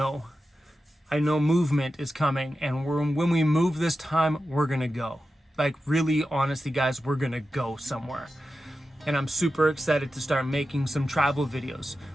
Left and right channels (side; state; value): both; normal; correlation 0.92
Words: I know movement is coming, and when we move this time, we're gonna go. Like, really, honestly, guys, we're gonna go somewhere. And I'm super excited to start making some travel videos